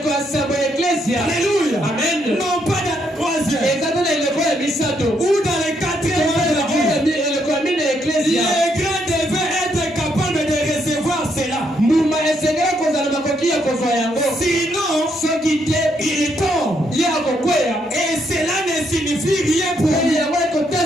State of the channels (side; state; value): both; normal; correlation 0.75